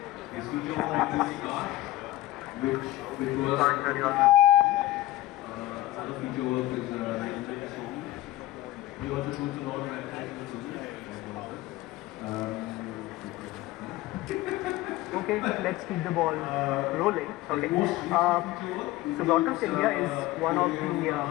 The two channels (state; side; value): quieter; right; 15.9 dB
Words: His future was this car, which was other future work is 9 He also shoots a lot of manufacturing Okay, let's keep the ball rolling. Okay. So Broadcast India is one of the